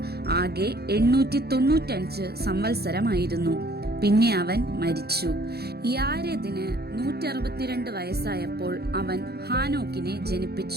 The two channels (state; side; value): late; left; 0.46 ms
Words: ആകെ 895 സംവത്സരമായിരുന്നു. പിന്നെ അവൻ മരിച്ചു. യാരെദിന് 162 വയസ്സായപ്പോൾ അവൻ ഹാനോക്കിനെ